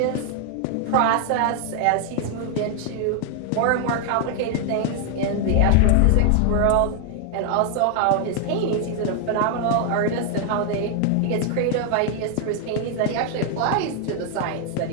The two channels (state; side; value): different; both; correlation 0.00